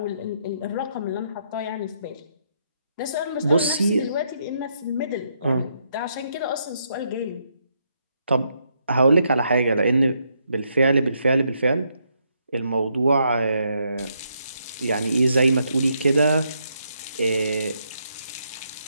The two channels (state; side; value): inverted; both; correlation -0.76